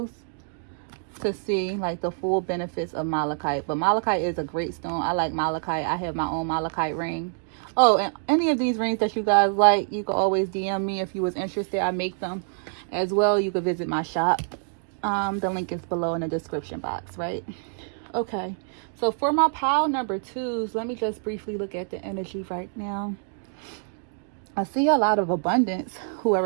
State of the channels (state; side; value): silent; left; digital silence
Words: to see like the full benefits of Malachite. But Malachite is a great stone. I like Malachite. I have my own Malachite ring. Oh, and any of these rings that you guys like, you can always DM me if you was interested. I make them as well. You can visit my shop. The link is below in the description box, right? Okay, so for my pile number 2s, let me just briefly look at the energy right now. I see a lot of abundance.